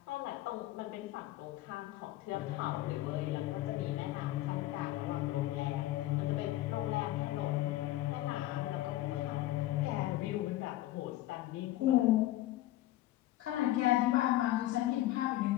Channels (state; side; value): quieter; right; 15.5 dB